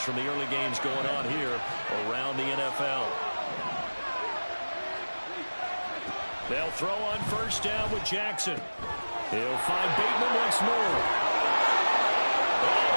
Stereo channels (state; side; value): inverted; both; correlation -1.00